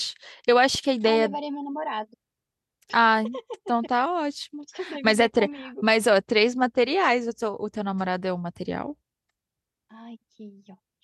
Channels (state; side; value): identical; both; correlation 1.00